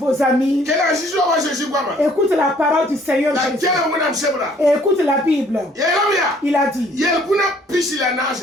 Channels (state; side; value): normal; both; correlation 0.60